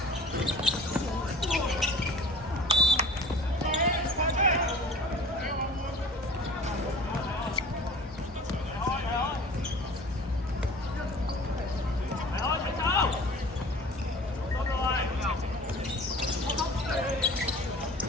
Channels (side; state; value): both; normal; correlation 0.43